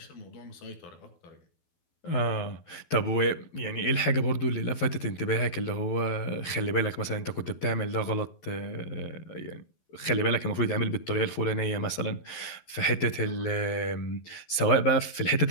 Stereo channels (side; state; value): right; late; 12 ms